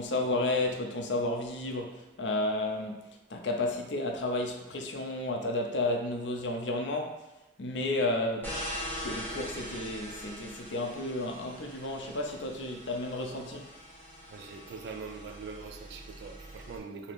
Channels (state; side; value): normal; both; correlation 0.05